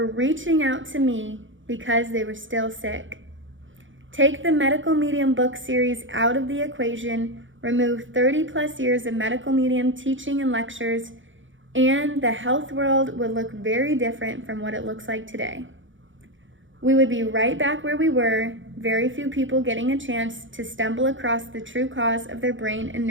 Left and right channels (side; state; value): left; late; 0.56 ms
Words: reaching out to me because they were still sick. Take the medical medium book series out of the equation, remove 30 plus years of medical medium teaching and lectures, and the health world would look very different from what it looks like today. We would be right back where we were, very few people getting a chance to stumble across the true cause of their brain and